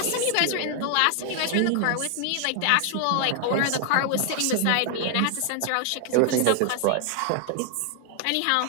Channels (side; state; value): both; different; correlation 0.00